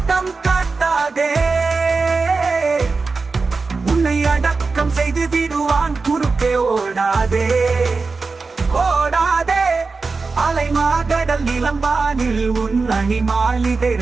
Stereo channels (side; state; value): left; quieter; 4.2 dB